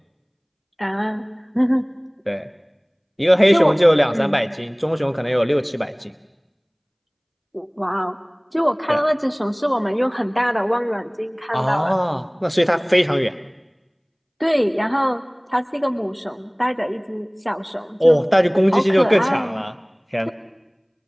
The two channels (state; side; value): identical; both; correlation 1.00